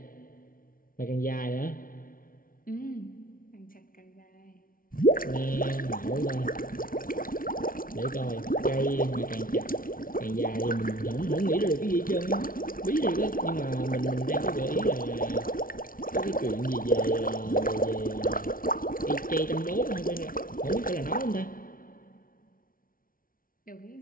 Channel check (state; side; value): late; right; 0.41 ms